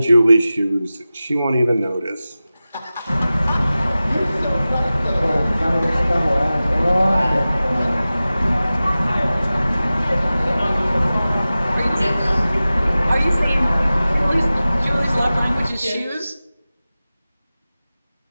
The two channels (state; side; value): inverted; both; correlation -0.96